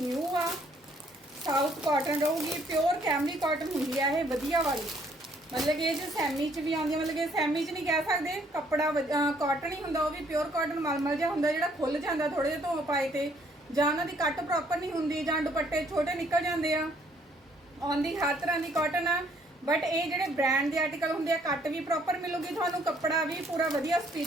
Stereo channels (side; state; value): both; normal; correlation 0.65